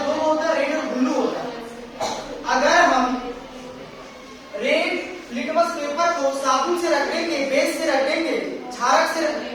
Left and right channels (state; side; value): identical; both; correlation 1.00